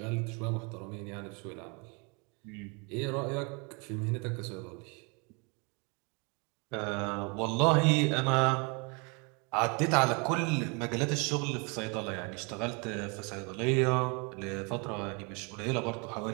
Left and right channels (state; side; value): quieter; left; 32.2 dB